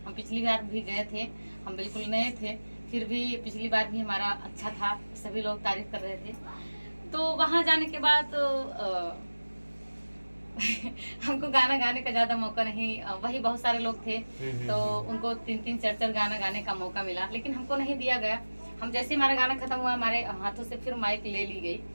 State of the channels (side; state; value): both; inverted; correlation -1.00